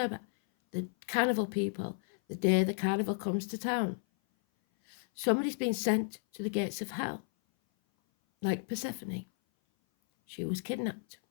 the carnival people, the day the carnival comes to town. Somebody's been sent to the gates of hell, like Persephone. She was kidnapped.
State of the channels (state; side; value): silent; right; 56 dB below the other